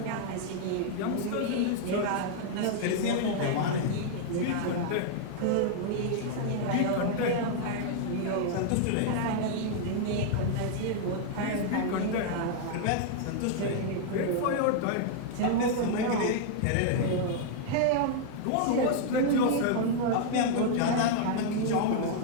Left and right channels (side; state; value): both; different; correlation -0.01